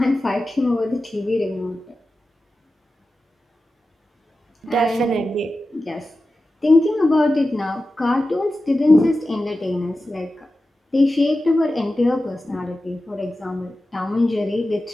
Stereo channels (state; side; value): normal; both; correlation 0.93